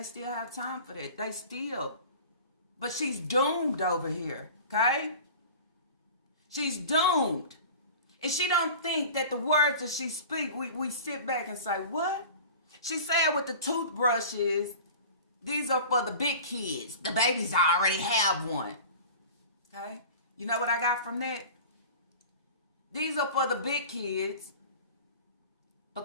still have time for that. They still. But she's doomed over here, okay? She's doomed. And she don't think that the words that she speak, we sit back and say, what? She said with the toothbrushes, these are for the big kids. The babies already have one. Okay? You know what I got from that? These are for the big kids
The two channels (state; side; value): inverted; both; correlation -0.38